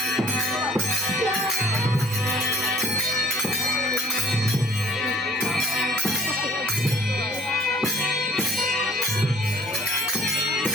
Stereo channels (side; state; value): both; normal; correlation 0.54